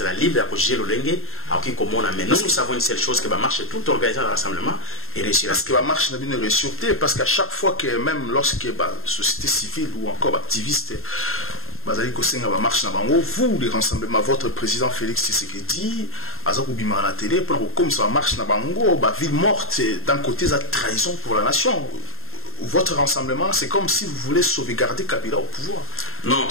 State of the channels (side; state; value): right; late; 0.61 ms